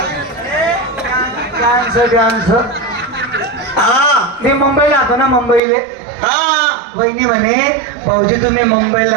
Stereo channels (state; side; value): drops out; left; at 5.6 s